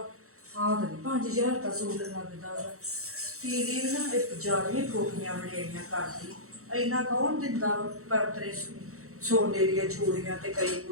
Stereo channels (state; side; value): late; left; 0.64 ms